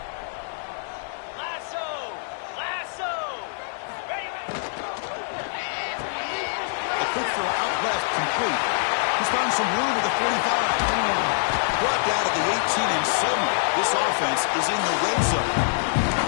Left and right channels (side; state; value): right; silent; digital silence